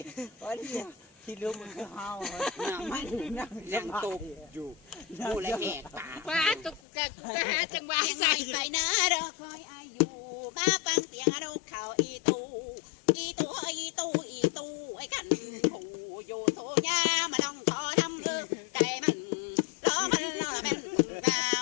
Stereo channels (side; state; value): right; drops out; at 6.8 s